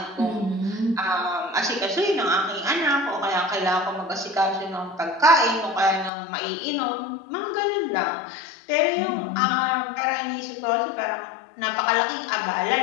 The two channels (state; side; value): drops out; right; at 6.1 s